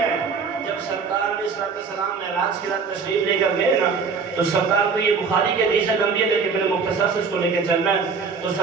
ہے۔ جب سرکار علیہ السلام معراج کی رات تشریف لے کر گئے نا، تو سرکار کو یہ بخاری کے حدیث لمبی ہے لیکن میں نے مختصر سے اس کو لے کے چلنا ہے۔ تو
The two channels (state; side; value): quieter; left; 5.3 dB